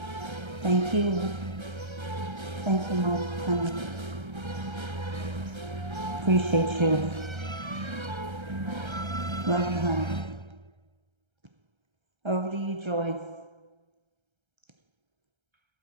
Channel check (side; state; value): left; late; 1.3 ms